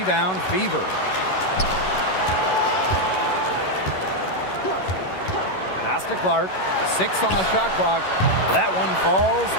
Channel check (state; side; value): late; right; 11 ms